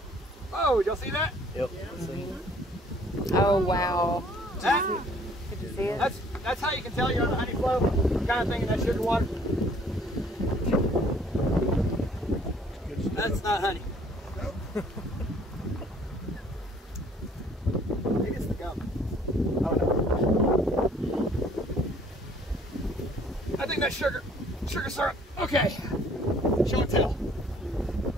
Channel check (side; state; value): both; normal; correlation 0.58